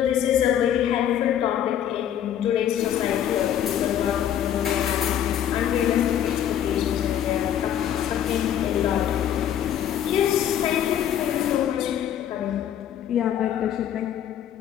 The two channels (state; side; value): quieter; right; 10.2 dB